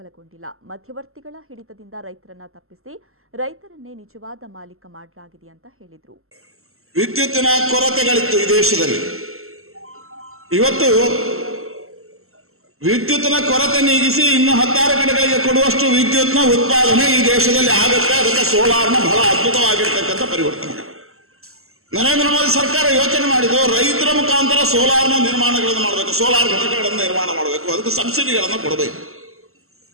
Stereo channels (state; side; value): late; left; 0.62 ms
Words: ಮಧ್ಯವರ್ತಿಗಳ ಹಿಡಿತದಿಂದ ರೈತರನ್ನ ತಪ್ಪಿಸಿ ರೈತರನ್ನೇ ನಿಜವಾದ ಮಾಲೀಕ ಮಾಡಲಾಗಿದೆ ಅಂತ ಹೇಳಿದರು. ವಿದ್ಯುತ್ತಿನ ಕೊರತೆಗಳಿತ್ತು ಈ ದೇಶದಲ್ಲಿ. ಇವತ್ತು ವಿದ್ಯುತ್ತಿನ ಕೊರತೆ ನೀಗಿಸಿ ಇನ್ನು 16 ಕಡೆಗಳಿಗೆ ಕೊಡುವಷ್ಟು ವಿದ್ಯುತ್ನ ಉತ್ಪಾದನೆ ಈ ದೇಶದಲ್ಲಿ ಆಗುತ್ತೆ. ಅದಕ್ಕೆ ಸೋಲಾರ್ನ ಬಹಳ ಅದ್ಭುತವಾಗಿರ್ತಕ್ಕಂಥ ಪರಿವರ್ತನೆ ನರೇಂದ್ರ ಮೋದಿ ಸರ್ಕಾರ ಯೋಚನೆ ಮಾಡಿದ್ದು, ರೈತರ ಮುಖಾಂತರ ಸೋಲಾರ್ನ ನಿರ್ಮಾಣಗಳನ್ನು ಮಾಡಬೇಕು, ಸೋಲಾರ್ ಘಟಕಗಳನ್ನು ನಿರ್ಮಾಣ ಮಾಡಬೇಕು, ಅದಕ್ಕೆ ಸಬ್ಸಿಡಿಗಳನ್ನು ಕೊಡಬೇಕು,